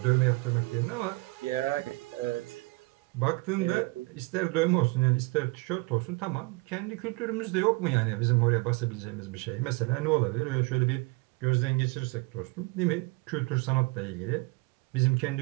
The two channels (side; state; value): left; quieter; 25.6 dB